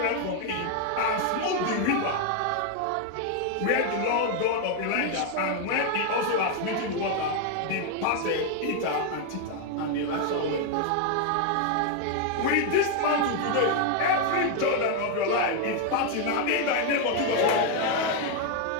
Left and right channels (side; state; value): both; different; correlation 0.00